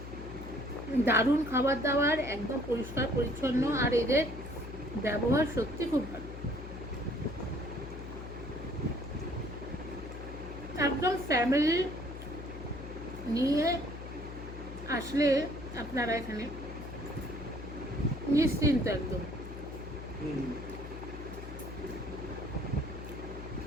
দারুণ খাবার দাবার, একদম পরিষ্কার পরিচ্ছন্ন, আর এদের ব্যবহার সত্যি খুব ভালো। একদম ফ্যামিলি নিয়ে আসলে আপনারা এখানে নিশ্চিন্ত একদম।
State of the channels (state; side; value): noise; left; hum, 10 dB below the sound